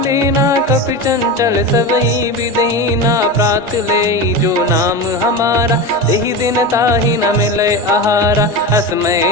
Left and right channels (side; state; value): both; normal; correlation 0.22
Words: कपि चंचल सबई विदहीना प्रात ले जो नाम हमारा तेहि दिन ताहि न मिले आहारा